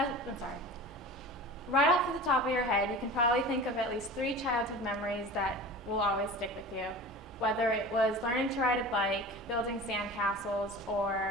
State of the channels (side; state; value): both; normal; correlation 0.36